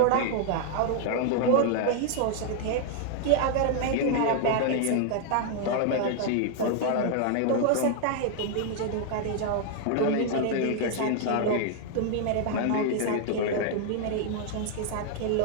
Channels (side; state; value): both; different; correlation 0.00